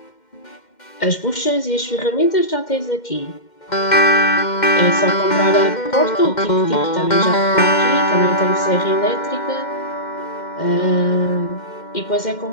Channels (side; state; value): right; late; 2.1 ms